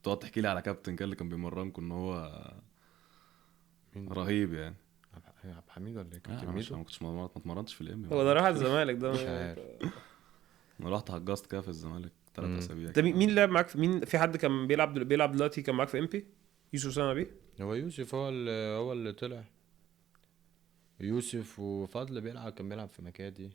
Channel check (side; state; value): left; quieter; 12.9 dB